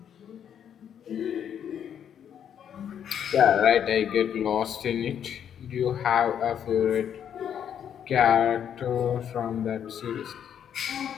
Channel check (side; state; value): right; quieter; 8.9 dB